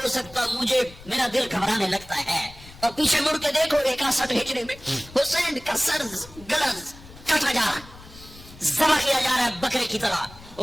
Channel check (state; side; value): noise; left; rumble, 20 dB below the sound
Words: سکتا، مجھے میرا دل گھبرانے لگتا ہے، اور پیچھے مڑ کے دیکھو 61 ہجری میں حسین کا سر گلا کاٹا جا رہا ہے، ذبح کیا جا رہا ہے بکرے کی طرح،